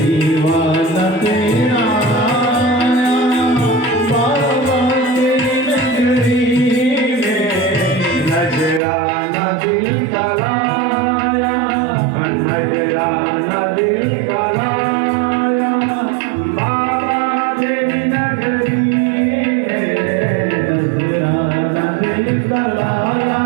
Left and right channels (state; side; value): drops out; left; at 8.8 s